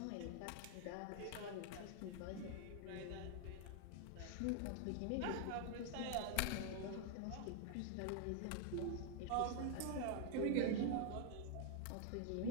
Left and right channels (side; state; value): both; different; correlation 0.00